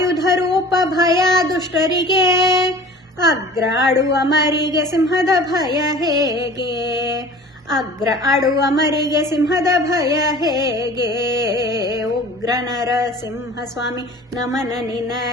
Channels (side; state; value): both; normal; correlation 0.43